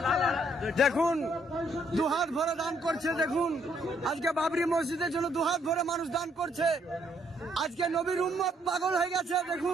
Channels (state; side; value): normal; both; correlation 0.70